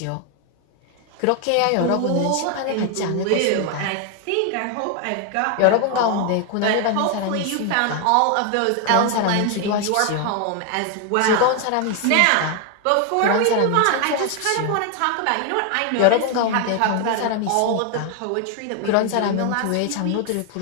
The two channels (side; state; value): both; different; correlation 0.01